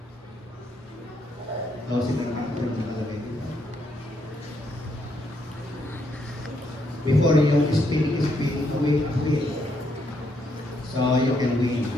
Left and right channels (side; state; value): both; normal; correlation 0.75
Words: before you speak, wait. So you can win.